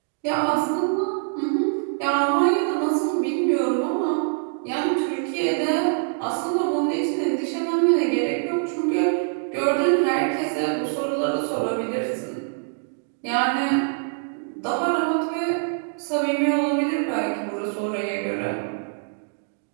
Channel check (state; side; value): silent; left; digital silence